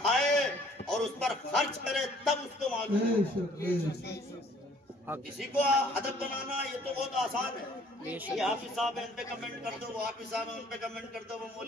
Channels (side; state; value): both; normal; correlation 0.57